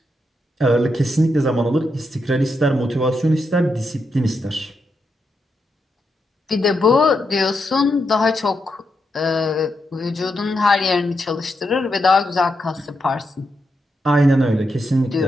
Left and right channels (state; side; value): normal; both; correlation 0.83